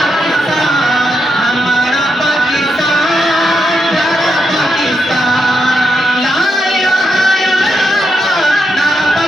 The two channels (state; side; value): normal; both; correlation 0.83